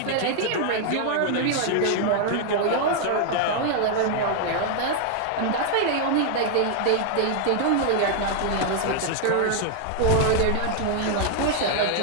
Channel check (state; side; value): different; both; correlation 0.00